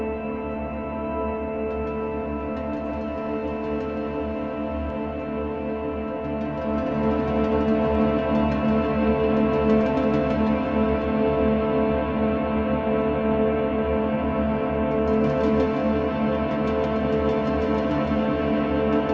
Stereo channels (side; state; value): both; identical; correlation 1.00